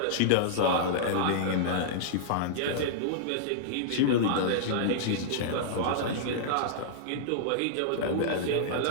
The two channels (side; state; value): both; different; correlation -0.02